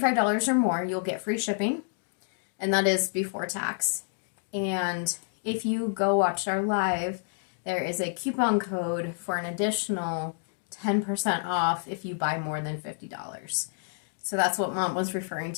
or more, you'll get free shipping, and that is before tax. And if you go watch our live, there is a coupon code for an additional 10% off if you buy more than $50. So that's what Mom was referring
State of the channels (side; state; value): right; silent; digital silence